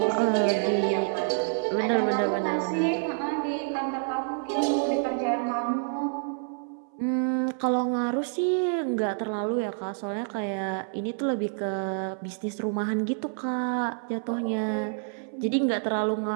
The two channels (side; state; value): left; silent; 60 dB below the other